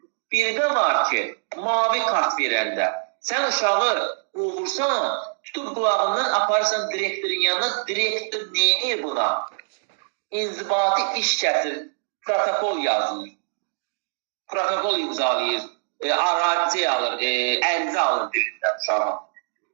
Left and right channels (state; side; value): silent; left; digital silence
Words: Bir də var ki, mavi kart verəndə, sən uşağı qovursan, tutub qulağından aparırsan direktorun yanına, direktor neyini buna? İnzibati iş kəsir, protokol yazılır. Protokol imzalayır, arazi alır, ərizə alır deyirlər uşağa.